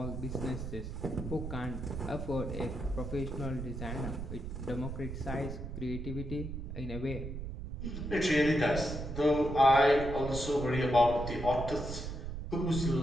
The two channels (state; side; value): noise; right; rumble, 6 dB below the sound